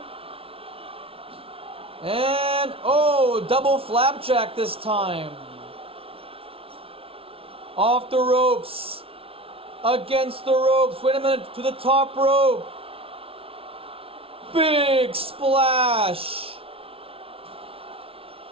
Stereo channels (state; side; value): late; left; 0.26 ms